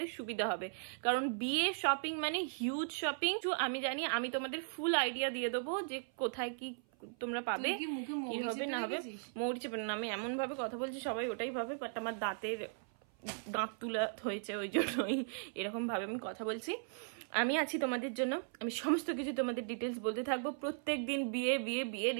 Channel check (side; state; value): left; silent; 53 dB below the other